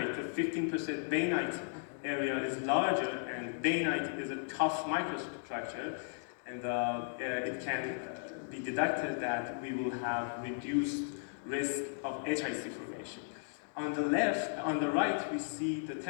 the 15% bainite area is larger, and bainite is a tough microstructure, and it can be deducted that we will have reduced risk of HIC formation. On the left, on the right, we see the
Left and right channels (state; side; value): silent; right; digital silence